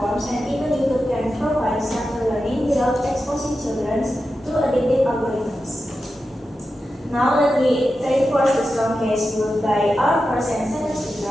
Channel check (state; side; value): normal; both; correlation 0.91